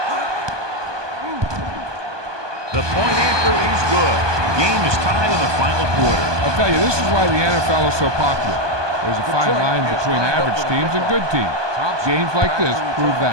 The point after is good. Game is tied in the final quarter. I'll tell you, this is why the NFL is so popular. There's a fine line between average teams and good teams. Games like this prove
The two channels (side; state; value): left; late; 1.2 ms